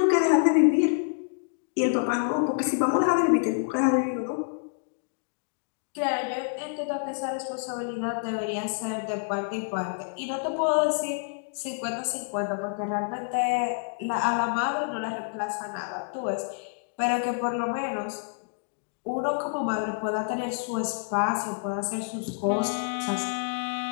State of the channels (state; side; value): silent; right; digital silence